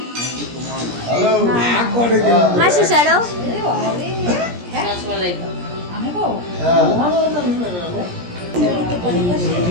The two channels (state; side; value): late; left; 17 ms